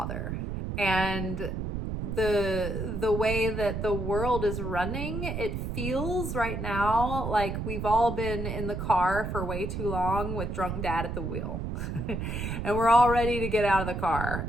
And the way that the world is running, it feels right now like we've all been in the car for way too long with drunk dad at the wheel. And we're all ready to get out of the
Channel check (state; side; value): noise; right; rumble, 4 dB below the sound